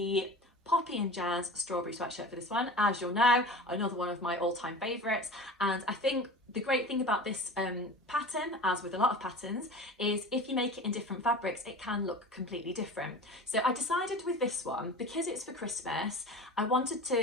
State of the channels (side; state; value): both; normal; correlation 0.35